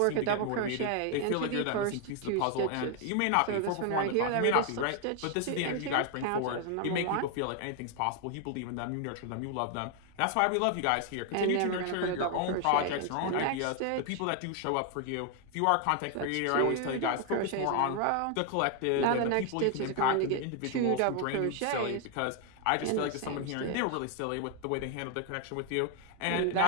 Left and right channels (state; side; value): different; both; correlation 0.00